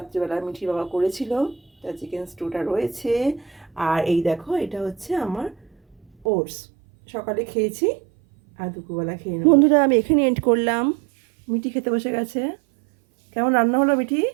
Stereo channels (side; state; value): left; drops out; at 6.2 s